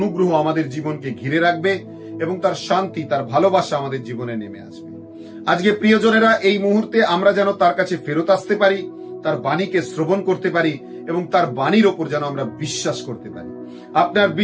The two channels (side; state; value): both; identical; correlation 1.00